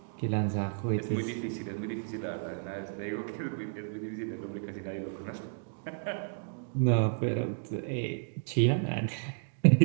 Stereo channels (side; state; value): left; silent; digital silence